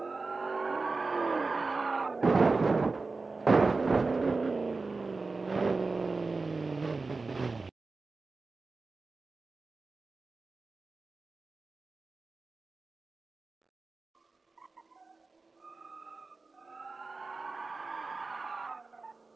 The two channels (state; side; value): quieter; left; 3.9 dB